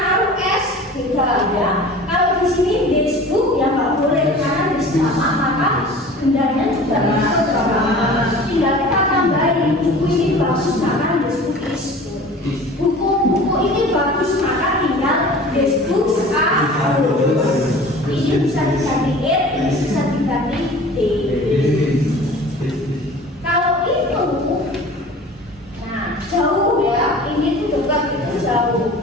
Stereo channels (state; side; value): normal; both; correlation 0.42